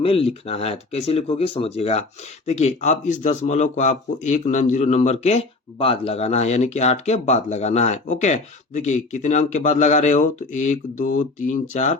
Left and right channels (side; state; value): right; quieter; 3.4 dB